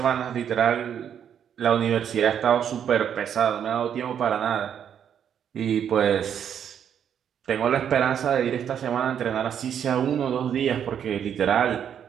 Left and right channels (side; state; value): left; quieter; 8.7 dB